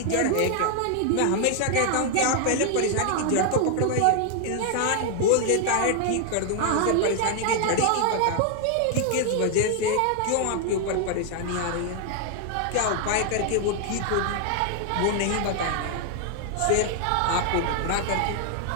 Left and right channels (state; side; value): different; both; correlation 0.00